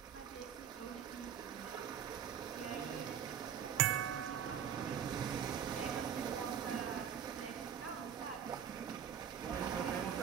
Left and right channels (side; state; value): left; quieter; 8.2 dB